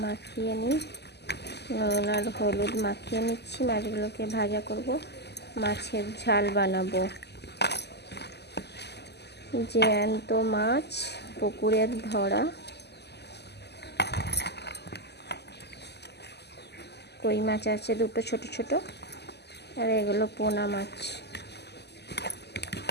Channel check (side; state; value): right; late; 0.49 ms